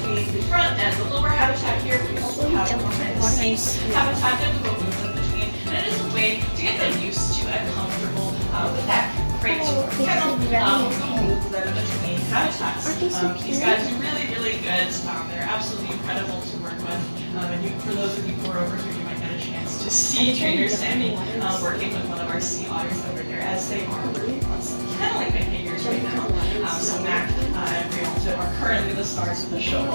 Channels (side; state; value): both; inverted; correlation -1.00